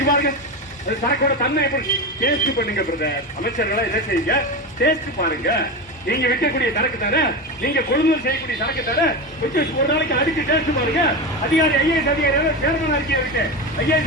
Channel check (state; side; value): normal; both; correlation 0.20